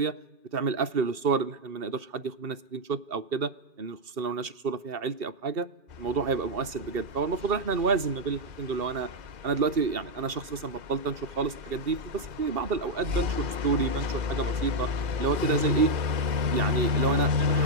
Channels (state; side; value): late; left; 2.7 ms